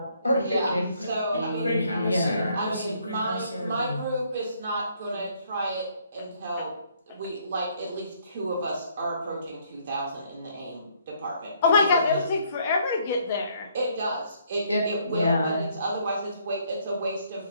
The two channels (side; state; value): both; inverted; correlation -0.67